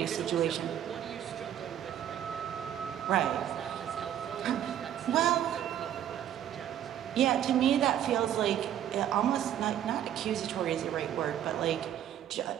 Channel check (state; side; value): quieter; left; 10.6 dB